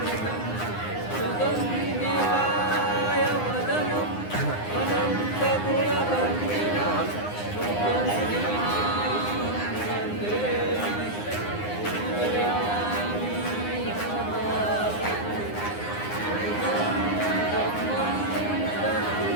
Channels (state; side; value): late; right; 9.7 ms